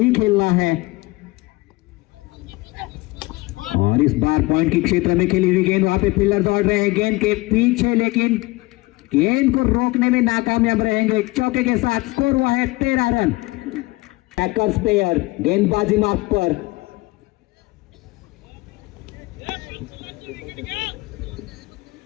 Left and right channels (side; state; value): right; quieter; 22.0 dB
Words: खेलना है। और इस बार पॉइंट के क्षेत्र में खेली हुई गेंद, वहां पे फील्डर दौड़ रहे हैं गेंद के पीछे, लेकिन गेंद को रोकने में नाकामयाब रहेंगे। चौके के साथ स्कोर हुआ है 13 रन। पैकर्स प्लेयर गेंदबाजी मार्क पर।